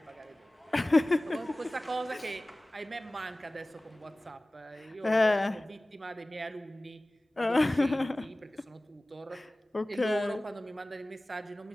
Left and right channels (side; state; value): both; normal; correlation 0.98